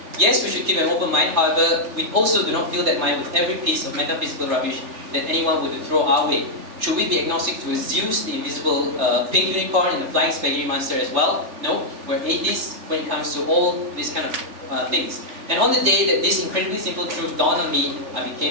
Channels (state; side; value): late; left; 3.3 ms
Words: Yes, we should keep an open mind, however, we also do not fill that mind with every piece of metaphysical rubbish that anyone would throw our way. Should we be agnostic to Zeus, the invisible pink unicorn, and the flying spaghetti monster as well? No, we're atheists when it comes to all these kind of things. And on the day that this incredibly simple truth dawned on me, I